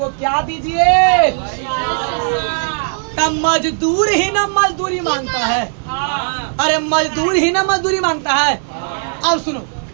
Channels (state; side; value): silent; left; digital silence